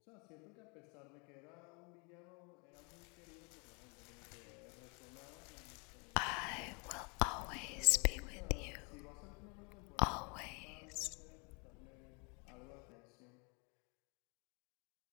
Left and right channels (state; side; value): quieter; right; 32.9 dB